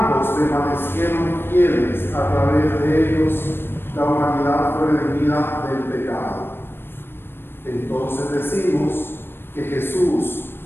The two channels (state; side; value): late; right; 0.10 ms